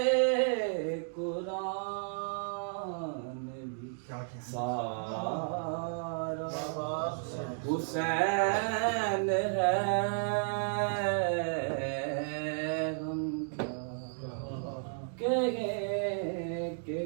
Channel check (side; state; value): left; silent; digital silence